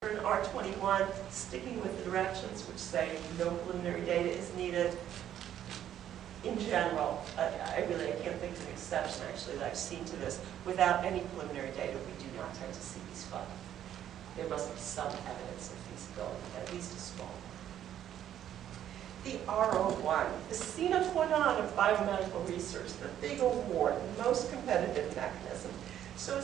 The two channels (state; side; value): quieter; left; 10.8 dB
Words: R21, sticking with the directions which say no preliminary data is needed. In general, I can't think of an exception actually that I've seen to this. Without any preliminary data, we do not tend to see these funds. There must be some evidence of feasibility, at least a small one. The R01, the sine qua non of biomedical research, the big award, the most competitive mechanism. So